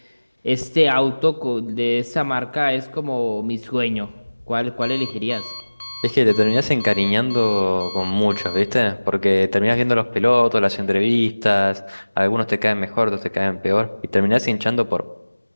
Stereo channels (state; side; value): inverted; both; correlation -1.00